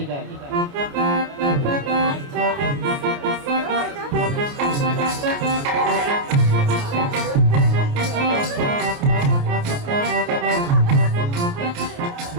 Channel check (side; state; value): left; late; 28 ms